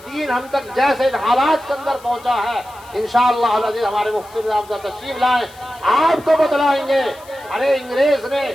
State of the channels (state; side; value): noise; left; hiss, 24 dB below the sound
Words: دین ہم تک جیسے ان حالات کے اندر پہنچا ہے انشاءاللہ العزیز ہمارے مفتی نظام صاحب تشریف لائیں آپ کو بتلائیں گے. ارے انگریز نے